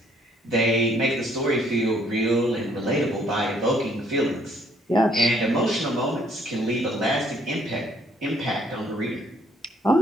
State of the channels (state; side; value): normal; both; correlation 0.65